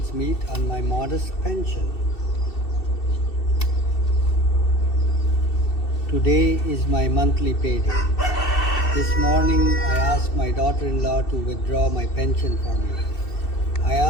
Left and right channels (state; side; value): late; right; 2.7 ms